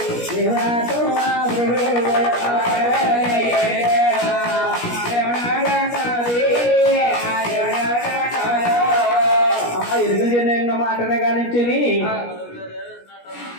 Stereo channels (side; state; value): right; late; 17 ms